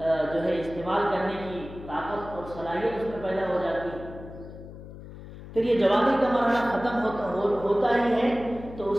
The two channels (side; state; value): left; noise; hum, 14 dB below the sound